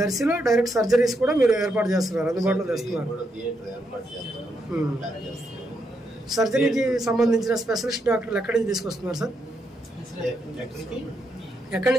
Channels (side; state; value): both; normal; correlation 0.80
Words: దర్శిలో డైరెక్ట్ సర్జరీస్ కూడా మీరు ఏర్పాటు చేస్తున్నారు, అందుబాటులో తెస్తున్నారు. కూడా థియేటర్ ఏర్పాటు చేస్తున్నాము, ప్లాన్ చేస్తున్నాము. సర్జరీకి సంబంధించిన స్పెషలిస్ట్ డాక్టర్లు ఎక్కడి నుంచి తీసుకొస్తున్నారు సార్? ఎక్కడి